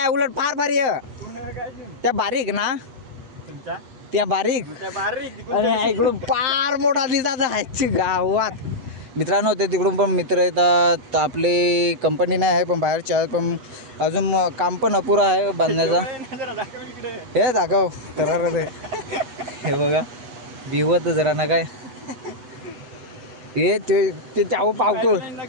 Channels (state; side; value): late; left; 8.1 ms